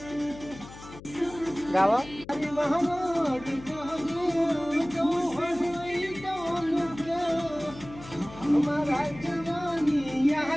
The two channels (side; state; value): left; noise; hum, 17 dB below the sound